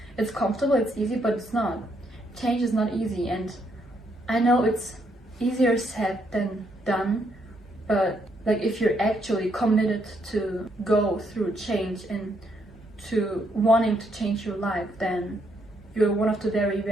comfortable, it's easy, but it's not. Change is not easy, and I know it's easier said than done, but like if you're actually committed to go through change and to wanting to change your life, then you're one of the very,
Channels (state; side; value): normal; both; correlation 0.74